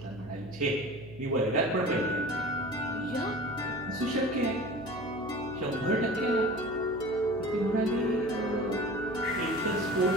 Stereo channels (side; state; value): right; noise; hum, 16 dB below the sound